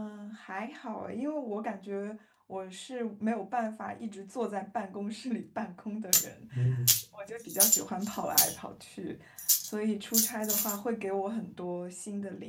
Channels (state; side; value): identical; both; correlation 1.00